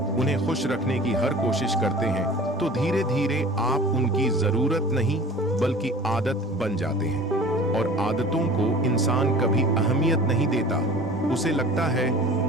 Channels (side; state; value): both; normal; correlation 0.43